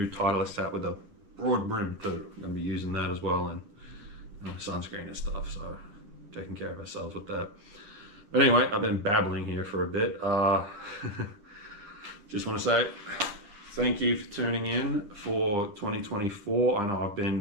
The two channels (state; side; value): late; left; 9.8 ms